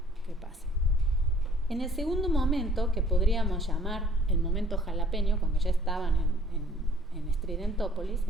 qué pasa. En el segundo momento, que podríamos llamar el momento jalapeño, cuando ya estaban en Estridentópolis,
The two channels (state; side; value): normal; both; correlation 0.56